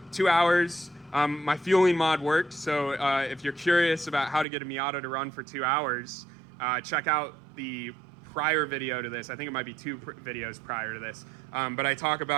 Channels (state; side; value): drops out; left; at 4.5 s